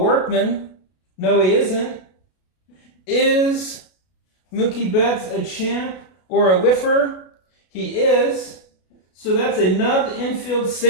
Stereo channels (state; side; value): late; right; 32 ms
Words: No, he isn't. Is Mookie Betts a champ or a whiffer? He is. So that's a nubbed infield